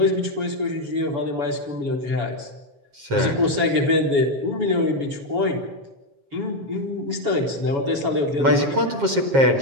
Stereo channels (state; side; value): late; left; 7.4 ms